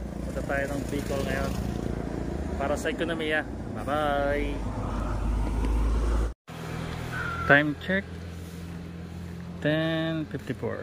Punta tayo ng Bicol ngayon para sa ekonomiya. Bye bye. Time check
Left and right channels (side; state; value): both; identical; correlation 1.00